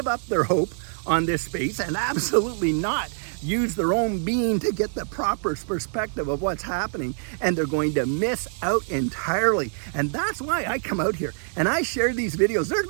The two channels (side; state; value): left; silent; 62 dB below the other